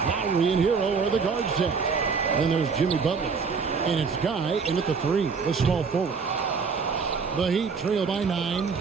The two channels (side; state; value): left; quieter; 5.4 dB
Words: and Hero are the guard set. Then there's Jimmy Butler. And it's Guy in at the 3, the small forward. The Heat trail by 9.